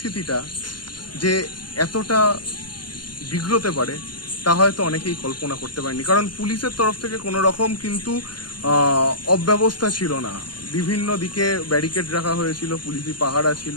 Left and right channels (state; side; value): late; right; 0.71 ms